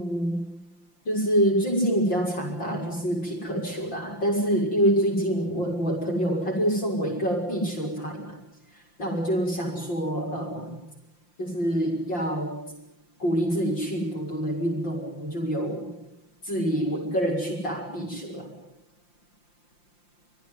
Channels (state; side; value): late; right; 5.8 ms